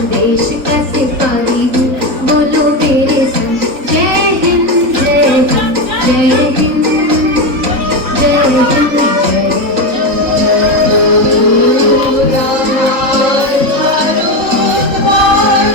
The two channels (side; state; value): left; late; 3.5 ms